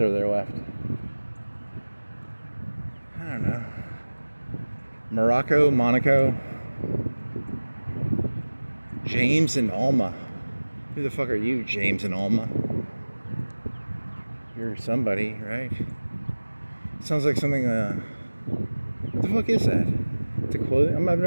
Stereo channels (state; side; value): inverted; both; correlation -1.00